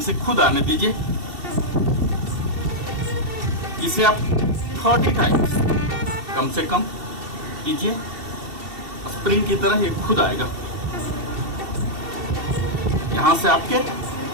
खुद आने दीजिए। इसे आप 30 टाइम्स कम से कम कीजिए, स्प्रिंग की तरह ये खुद आएगा। यहां से आपके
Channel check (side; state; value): left; late; 2.7 ms